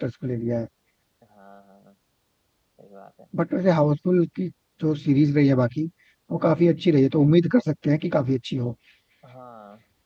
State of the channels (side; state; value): both; identical; correlation 1.00